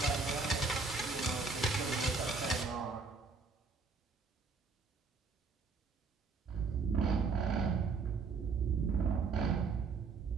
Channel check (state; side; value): quieter; left; 4.5 dB